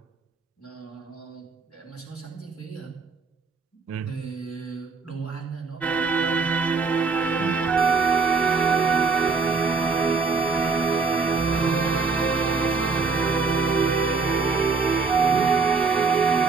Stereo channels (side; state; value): left; quieter; 4.7 dB